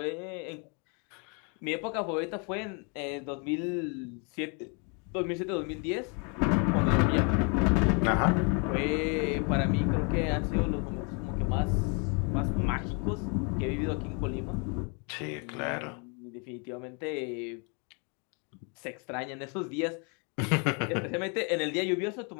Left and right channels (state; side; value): quieter; right; 35.9 dB